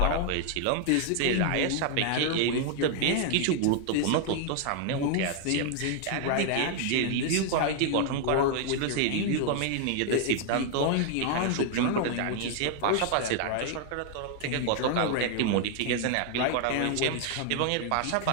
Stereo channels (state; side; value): different; both; correlation 0.00